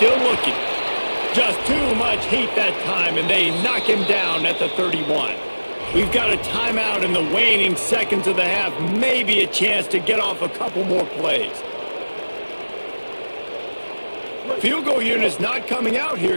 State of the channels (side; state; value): both; inverted; correlation -1.00